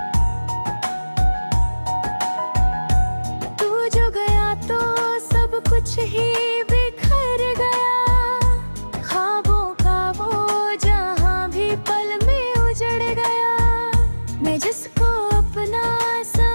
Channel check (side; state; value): both; inverted; correlation -1.00